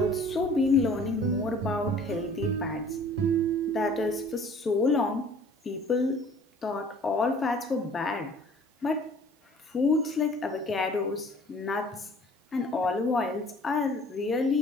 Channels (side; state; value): both; normal; correlation 0.51